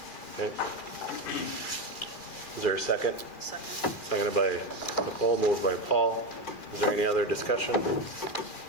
Okay. Is there a second? Second. Seconded by Nicole, moved by Paul. Is there any other discussion?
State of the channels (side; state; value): right; late; 2.4 ms